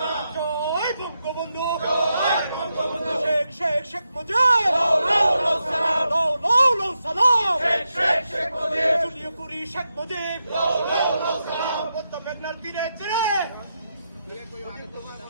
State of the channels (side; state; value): both; inverted; correlation -0.86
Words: জয় বঙ্গবন্ধু শেখ মুজিব সালাম জুলিও কুরি শেখ মুজিব মেঘনার তীরে ছেড়ে